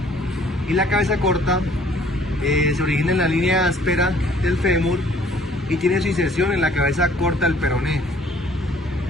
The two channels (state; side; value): normal; both; correlation 0.58